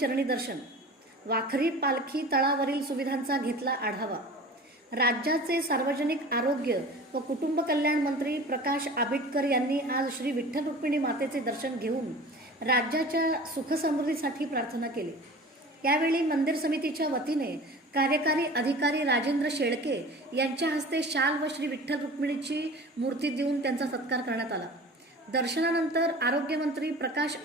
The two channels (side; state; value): both; normal; correlation 0.39